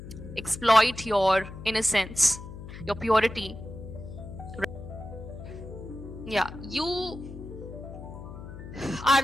exploit your innocence, your purity. Yeah, you are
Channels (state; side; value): noise; left; hum, 12 dB below the sound